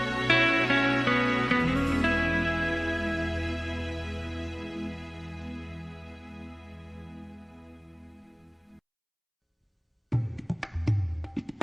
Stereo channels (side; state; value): both; identical; correlation 1.00